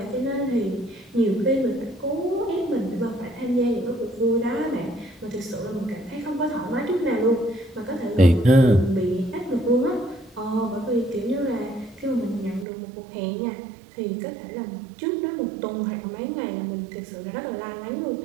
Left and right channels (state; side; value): drops out; left; at 12.7 s